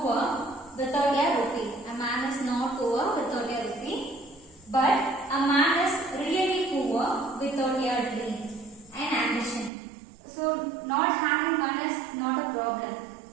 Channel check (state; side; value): drops out; left; at 9.7 s